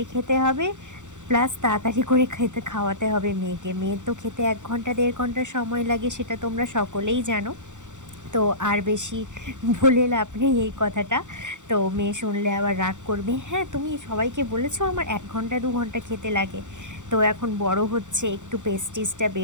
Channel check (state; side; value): late; left; 0.85 ms